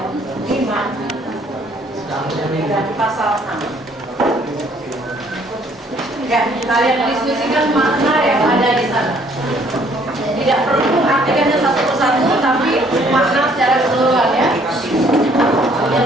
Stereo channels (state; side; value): normal; both; correlation 0.62